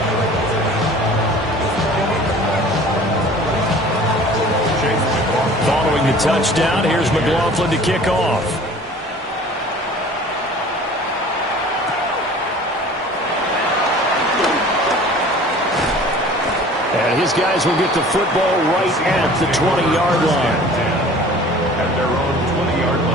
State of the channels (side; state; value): both; normal; correlation 0.46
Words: Following the touchdown, here's McLaughlin to kick off. And his guys will get the football right at the 20-yard line. At their own 20-yard